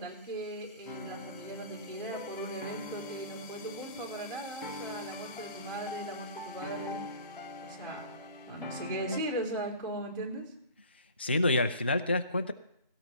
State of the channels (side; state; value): both; inverted; correlation -0.42